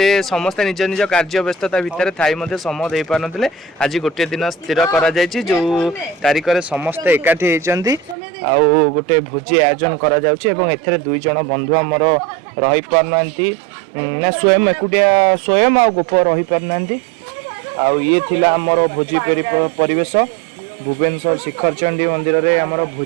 समस्त निज निज कार्य व्यस्तता भितर थाई मध्ये समय देई पार नथिले आज गोटे दिन स्थिर करा जायछि जो तारिख रे समस्त एकाठी हेइचंदी आ गोटे भोजी आयोजन करा जाउछि एवं एथरे दुई जण बंधु हमर रहि पार नंती ना स्वयं एकुटिया स्वयं आ गोप रहि पार नंती आ ये थिला हमर भोजी परिवेश भुवनेश्वर शिखर चंडी मंदिर रे हमर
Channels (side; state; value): left; drops out; at 8.2 s